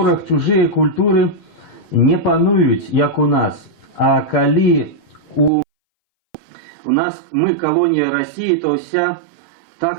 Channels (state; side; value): drops out; left; at 5.5 s